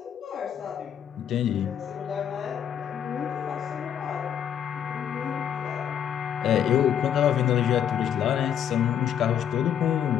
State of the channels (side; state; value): right; quieter; 9.1 dB